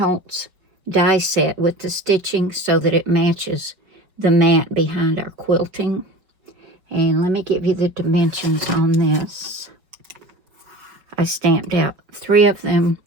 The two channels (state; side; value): late; left; 5.4 ms